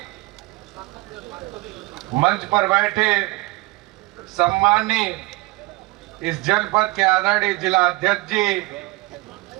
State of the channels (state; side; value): quieter; left; 22.0 dB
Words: मंच पर बैठे सम्मानीय इस जनपद के आदरणीय जिला अध्यक्ष जी,